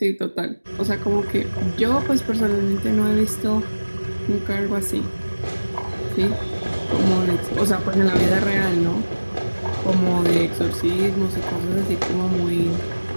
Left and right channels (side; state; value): both; inverted; correlation -1.00